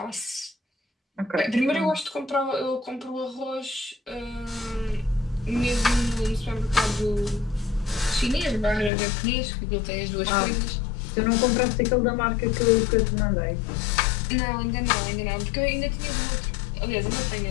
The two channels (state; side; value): drops out; right; at 8.9 s